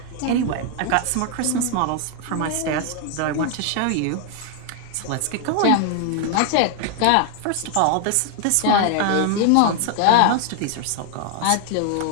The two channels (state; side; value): different; both; correlation 0.00